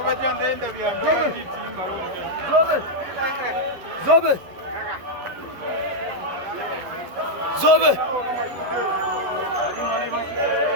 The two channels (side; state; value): left; late; 11 ms